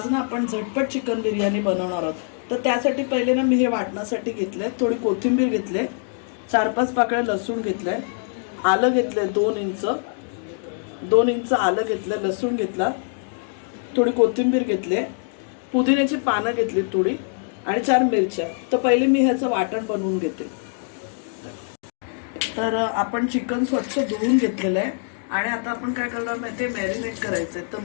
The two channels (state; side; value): silent; right; 59 dB below the other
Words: ना आपण झटपट चिकन बिर्याणी बनवणार आहोत. तर त्यासाठी पहिले ना मी हे वाटण्यासाठी घेतले, थोडी कोथिंबीर घेतले, 4-5 पाकळ्या लसूण घेतले, आलं घेतले 2 इंच आलं घेतलं, लसूण घेतला, थोडी कोथिंबीर घेतले, पुदिन्याची पानं घेतली थोडी आणि 4 मिरच्या. तर पहिले मी ह्याचं वाटण बनवून घेते. तर आपण चिकन स्वच्छ धुवून घेतलेलं आहे आणि आता आपण काय करणार माहिती आहे, मॅरिनेट करायचंय. तर